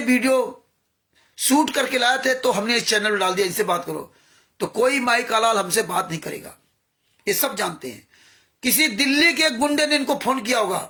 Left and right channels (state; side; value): identical; both; correlation 1.00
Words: वीडियो शूट करके लाए थे तो हमने इस चैनल में डाल दिया, इनसे बात करो। तो कोई माई कालाल हमसे बात नहीं करेगा, ये सब जानते हैं। किसी दिल्ली के गुंडे ने इनको फोन किया होगा,